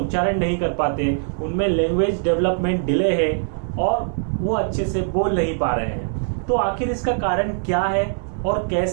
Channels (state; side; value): silent; left; digital silence